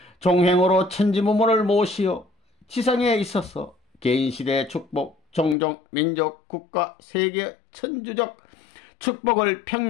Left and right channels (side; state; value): right; drops out; at 5.6 s